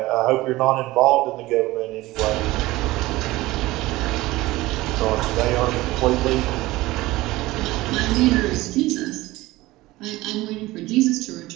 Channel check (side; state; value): left; quieter; 18.7 dB